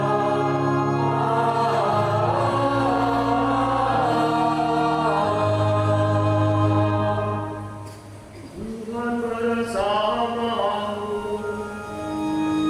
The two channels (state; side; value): identical; both; correlation 1.00